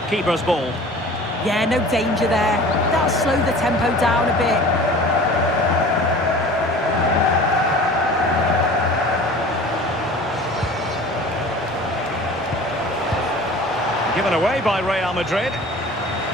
Keeper's ball. Yeah, no danger there. That'll slow the tempo down a bit. Given away by Real Madrid.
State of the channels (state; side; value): normal; both; correlation 0.42